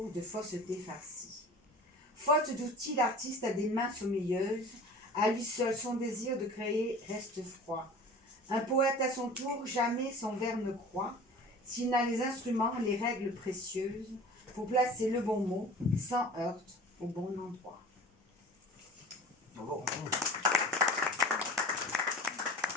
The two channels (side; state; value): both; normal; correlation 0.40